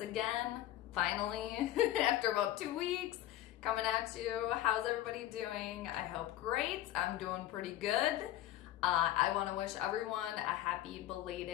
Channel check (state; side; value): quieter; right; 13.5 dB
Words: again, finally, after about 2 weeks, coming at you. How's everybody doing? I hope great. I'm doing pretty good. I want to wish everyone a happy